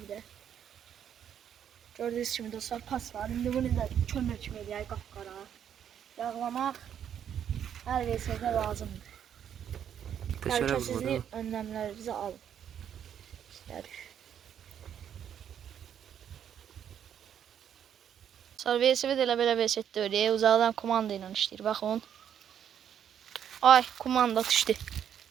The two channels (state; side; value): quieter; left; 9.1 dB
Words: da. Gördüyünüz kimi dostlar, pas var. İndi bunu da kömür kimi eləyək qapqara. Yağlamaq hər versədə lazımdır. Təhlükəsizlik önləmlərinizi alın. İstərik. Sonra velosiped elə belə velosipeddə öyle uzaqdan kumanda ilə işləyir. Baxın. Ay, kumanda düşdü.